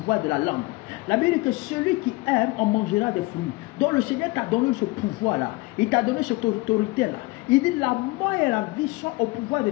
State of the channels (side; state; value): right; quieter; 22.6 dB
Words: de la langue. La Bible dit que celui qui aime en mangera des fruits. Donc le Seigneur t'a donné ce pouvoir-là. Il t'a donné cette autorité-là. Il dit la mort et la vie sont au pouvoir de